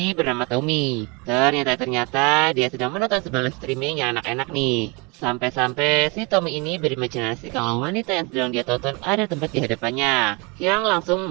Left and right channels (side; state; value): left; quieter; 28.9 dB